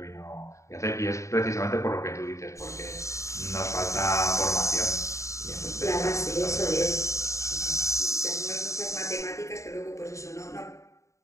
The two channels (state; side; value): late; right; 0.15 ms